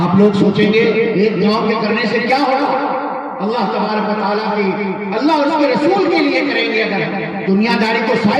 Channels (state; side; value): identical; both; correlation 1.00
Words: لوگ سوچیں گے ایک گاؤں کے کرنے سے کیا ہوگا؟ اللہ تبارک و تعالیٰ کی، اللہ اور اس کے رسول کے لیے کریں گے۔ اگر دنیا داری کو